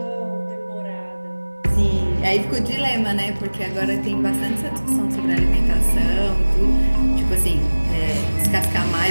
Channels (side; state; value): both; inverted; correlation -1.00